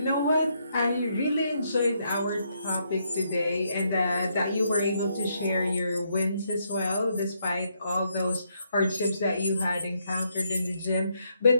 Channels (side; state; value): both; inverted; correlation -0.76